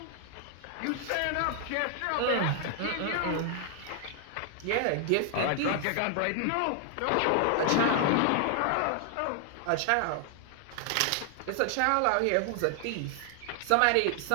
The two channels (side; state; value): both; different; correlation 0.00